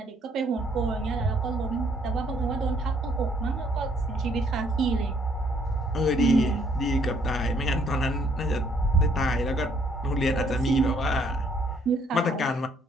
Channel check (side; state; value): both; normal; correlation 0.66